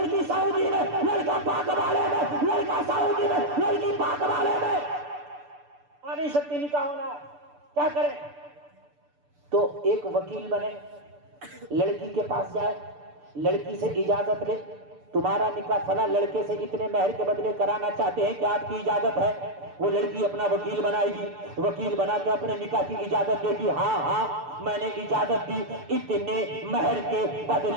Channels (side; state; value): left; late; 6.8 ms